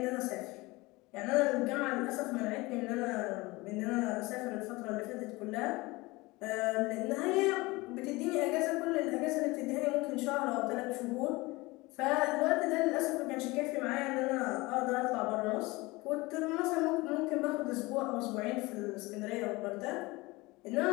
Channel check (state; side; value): quieter; right; 22.4 dB